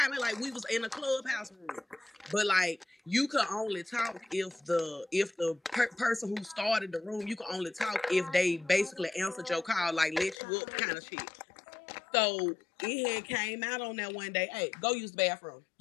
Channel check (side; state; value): right; drops out; at 10.4 s